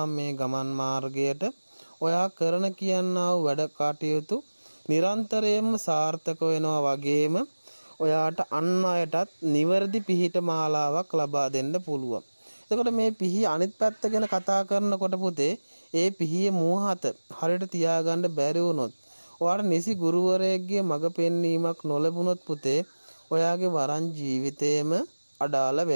මේ ගමන් මාර්ගයට ඔයා කරන කියනා වූ වැඩ කටයුතු නිරන්තරයෙන්ම සාර්ථක වෙනවා වගේම ඔයාට අන් අයටත් නිවැරදි පිහිට මාලාවක් ලබා දෙන්න පුළුවන්. එතකොට මේ පිහිය අනිත් පැත්ත ගැන කතා කරනකොට පුතේ ඒ පිහියේ මෝහත හරියට තියාගන්න බැරි වුණොත් ඔයාට නිසි ගුරුවරයෙක්ගේ මඟ පෙන්වීමක් නොලැබුණොත් පුතේ ඔයාගේ වරන් ජීවිතේම අඩාල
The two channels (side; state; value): both; inverted; correlation -1.00